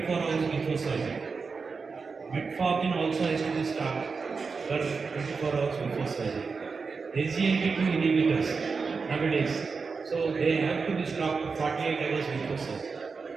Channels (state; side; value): quieter; left; 4.8 dB